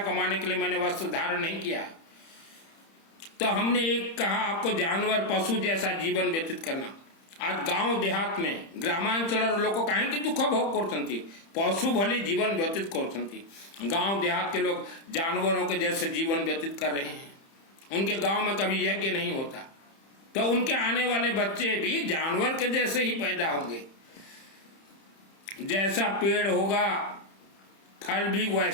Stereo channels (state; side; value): late; right; 30 ms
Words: कमाने के लिए मैंने वस्त्र धारण नहीं किया। तो हमने एक कहा आपको जानवर पशु जैसा जीवन व्यतीत करना। आज गांव देहात में ग्रामांचल लोग कहीं दुख भोग करते, पशु भली जीवन व्यतीत करते। गांव देहात के लोग जानवरों के जैसे जीवन व्यतीत कर रहे हैं। उनके गांव में कभी यज्ञ नहीं होता, तो उनके आने वाले बच्चे भी जानवर के जैसे ही पैदा होंगे। जैसा पेड़ होगा फल भी